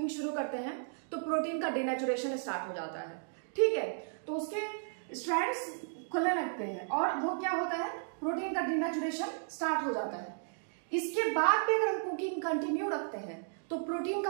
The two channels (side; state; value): left; silent; digital silence